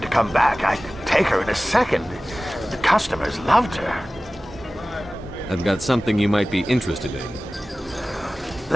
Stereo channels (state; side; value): normal; both; correlation 0.97